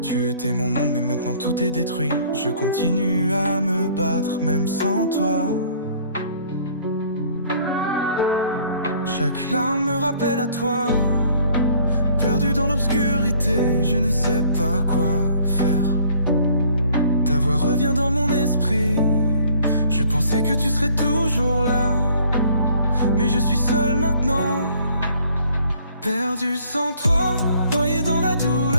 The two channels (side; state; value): both; inverted; correlation -0.58